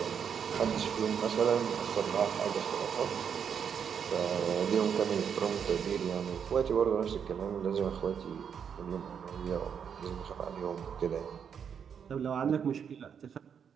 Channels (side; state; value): left; quieter; 7.4 dB